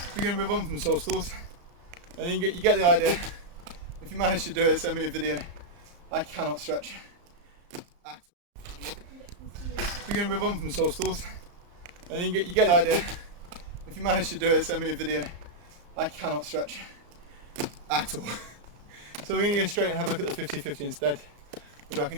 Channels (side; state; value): left; late; 34 ms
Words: We're going to move on from sole stalls. I think you get the idea. If you manage to do it, send me a video. I cannot stretch at all. We're going to move on from sole stalls. I think you get the idea. If you manage to do it, send me a video. I cannot stretch at all. So we're going to go straight and have a look at the 50-50 instead, which I